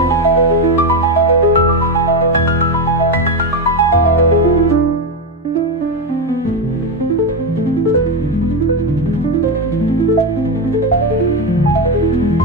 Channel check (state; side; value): normal; both; correlation 0.11